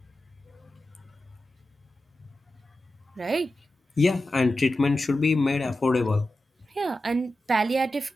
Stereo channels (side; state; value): both; normal; correlation 0.92